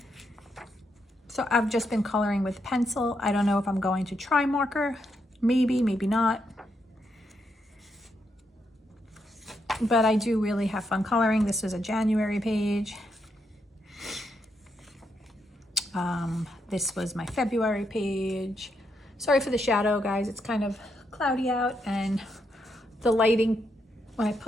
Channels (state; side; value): normal; both; correlation 0.80